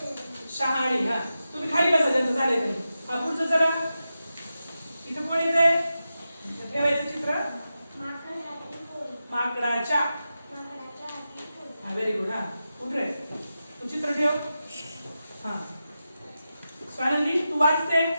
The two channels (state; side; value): inverted; both; correlation -0.91